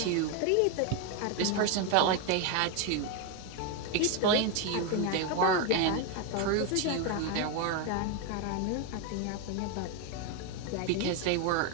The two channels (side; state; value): both; different; correlation 0.01